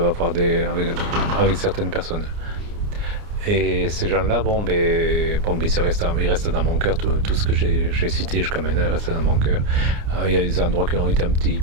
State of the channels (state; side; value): late; left; 29 ms